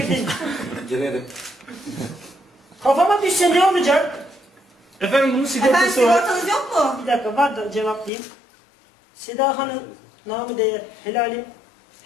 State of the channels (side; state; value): right; drops out; at 8.1 s